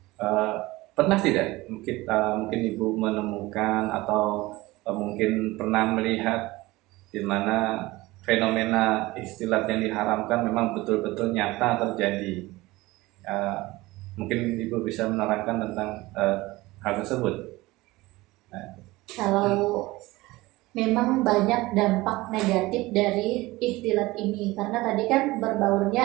Pernah tidak mungkin Ibu menemukan atau mungkin pernah melihat di mana fenomena ikhtilat yang diharamkan memang betul-betul nyata terjadi? Mungkin Ibu bisa menerangkan tentang hal tersebut. Kalau memang banyak dampak negatif dari ikhtilat ini, karena tadi kan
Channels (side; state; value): left; quieter; 20.0 dB